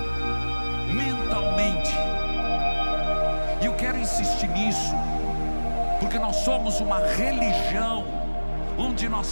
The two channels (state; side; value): inverted; both; correlation -1.00